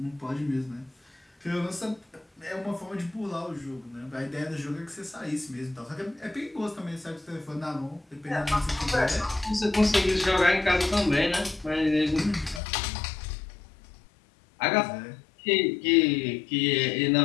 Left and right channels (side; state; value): right; drops out; at 12.6 s